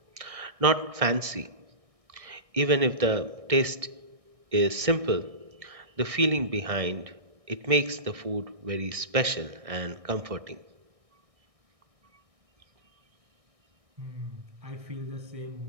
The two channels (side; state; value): left; late; 1.6 ms